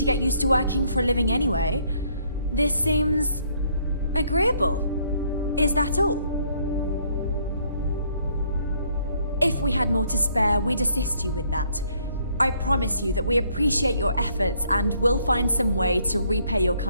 get used to working for a living anyway. This seems... agreeable. Is that all? If we had more to spare, we'd assist you with that. I promise you that we appreciate your efforts and we'll find some way to repay your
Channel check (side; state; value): both; inverted; correlation -0.67